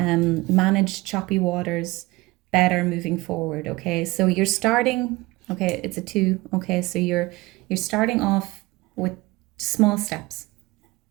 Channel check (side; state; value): left; quieter; 21.5 dB